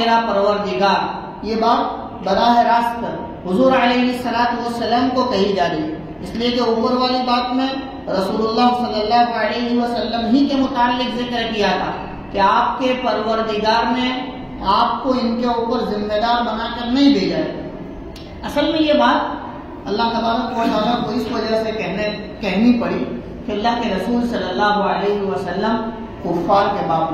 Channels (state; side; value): identical; both; correlation 1.00